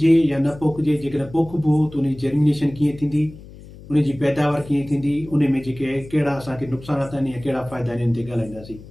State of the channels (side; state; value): left; noise; hum, 18 dB below the sound